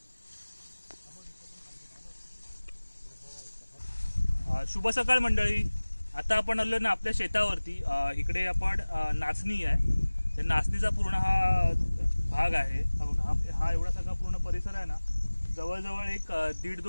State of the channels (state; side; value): inverted; both; correlation -1.00